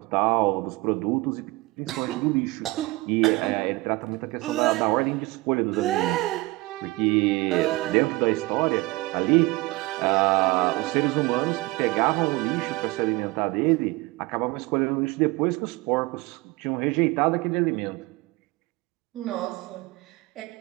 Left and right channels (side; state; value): left; quieter; 22.1 dB